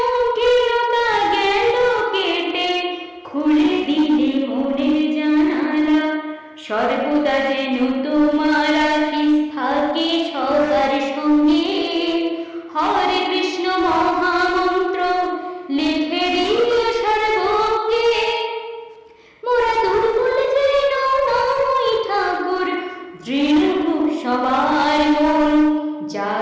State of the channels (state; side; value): identical; both; correlation 1.00